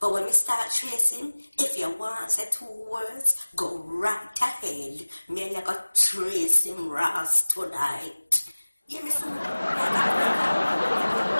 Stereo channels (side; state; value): both; inverted; correlation -1.00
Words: when we start tracing, if you want to say 2 words, go right ahead. Me and you got trace him Ross tonight. Yeah, me soon. Me